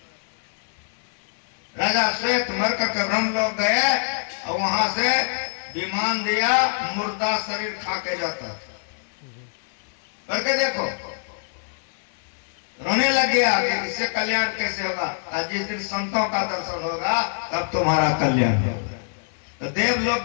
राजा श्वेत मर करके ब्रह्मलोक गए और वहां से विमान दिया, मुर्दा शरीर खा के जाता था। करके देखो, रोने लग गया कि इससे कल्याण कैसे होगा। जिस दिन संतों का दर्शन होगा तब तुम्हारा कल्याण होगा। तो देव लोग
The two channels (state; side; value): silent; right; 56 dB below the other